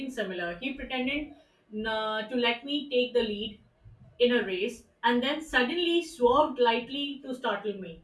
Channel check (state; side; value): identical; both; correlation 1.00